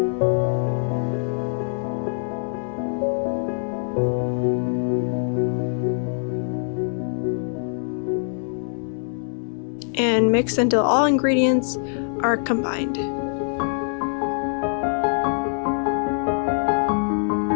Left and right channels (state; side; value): silent; right; 61 dB below the other